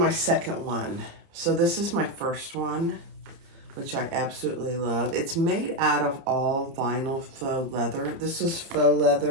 second one. So this is my first one, which I absolutely love. It's made out of all vinyl faux leather. This is faux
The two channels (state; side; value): late; left; 30 ms